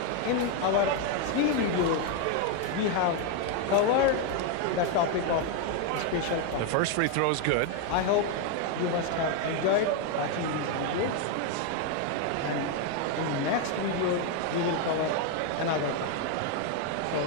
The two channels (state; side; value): different; both; correlation 0.01